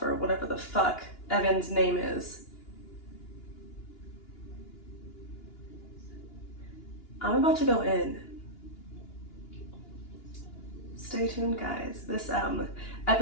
or whatever the fuck Evan's name is. I'm about to go in. Stay tuned, guys. This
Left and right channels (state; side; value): late; right; 2.9 ms